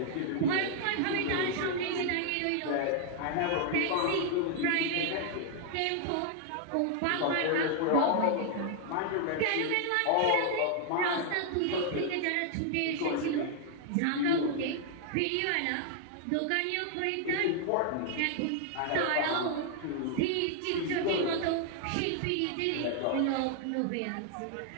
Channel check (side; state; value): both; different; correlation 0.00